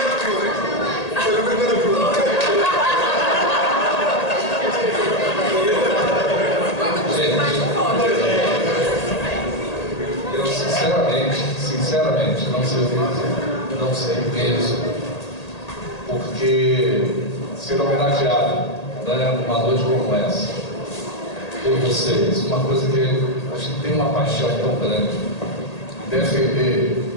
Eu sinceramente, não sei mesmo, porque ser homenageado, né, numa noite como essa, por vocês, uma coisa que a gente tem uma paixão tão grande, defender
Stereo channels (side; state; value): right; late; 1.8 ms